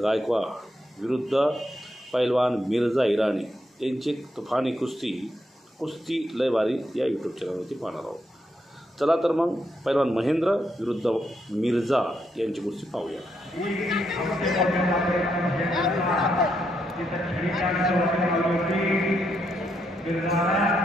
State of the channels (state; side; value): normal; both; correlation 0.79